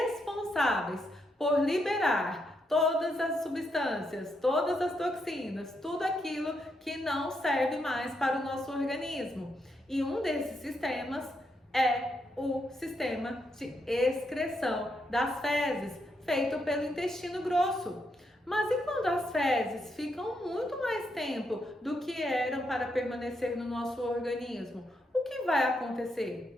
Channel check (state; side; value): normal; both; correlation 0.80